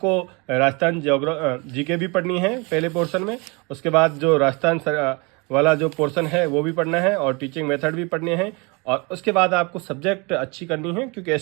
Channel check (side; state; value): left; quieter; 29.2 dB